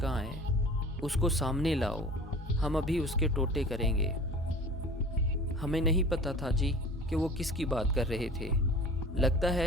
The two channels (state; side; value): normal; both; correlation 0.41